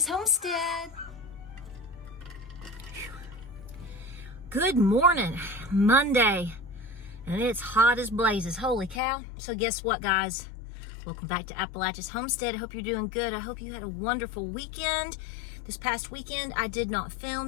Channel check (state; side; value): drops out; right; at 9.0 s